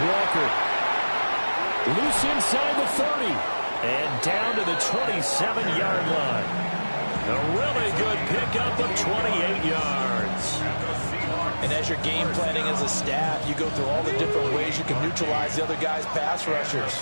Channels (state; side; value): inverted; both; correlation -1.00